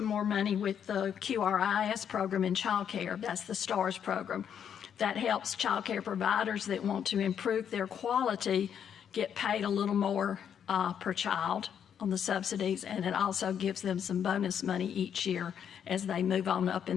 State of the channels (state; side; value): quieter; right; 8.4 dB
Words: more money with the QRIS program in child care. That's the STARS program. that helps child care providers that want to improve their quality get paid a little more per child on the subsidies, and it also gives them some bonus money each year as they move on up